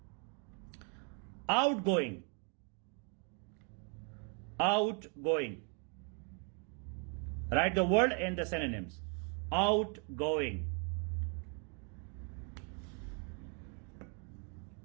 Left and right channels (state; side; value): quieter; left; 34.6 dB